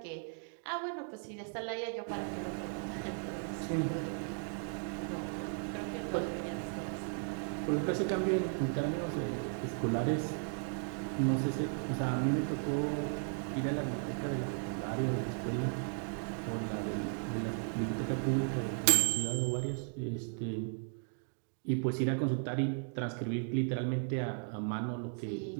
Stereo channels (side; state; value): left; silent; 54 dB below the other